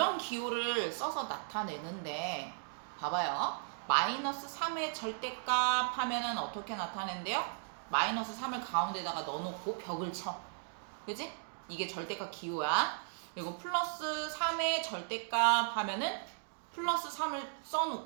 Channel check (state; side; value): silent; left; digital silence